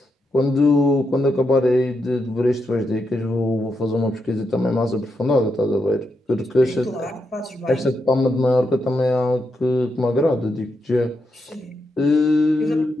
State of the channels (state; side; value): normal; both; correlation 0.83